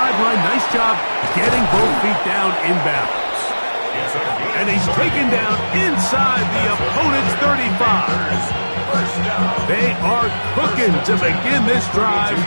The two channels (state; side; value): inverted; both; correlation -1.00